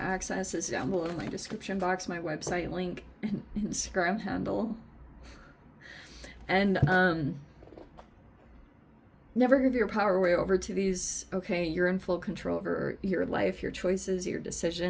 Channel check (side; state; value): both; identical; correlation 1.00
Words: access is down below in my description box, my website link, and Instagram handle. And never give your power away over to these. Okay, you're in full control over your life, your choices, your